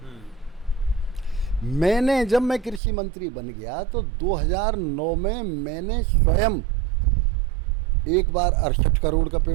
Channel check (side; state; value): left; drops out; at 2.8 s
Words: जब मैं कृषि मंत्री बन गया तो 2009 में मैंने स्वयं एक बार 68 करोड़ का